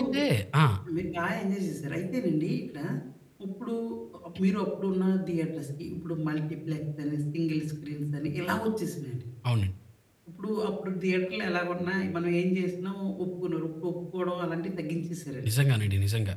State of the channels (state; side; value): identical; both; correlation 1.00